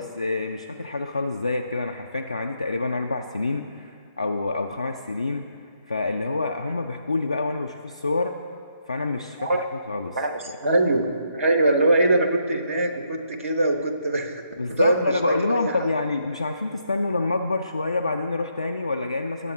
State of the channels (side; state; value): both; inverted; correlation -0.76